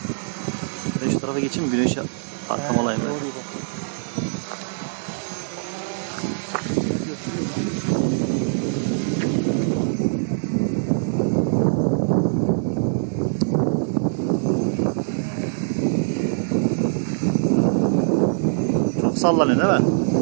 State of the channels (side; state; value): left; silent; digital silence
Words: Ben şu tarafa geçeyim, güneşe arkam alayım ben. Çok sallanıyor değil mi?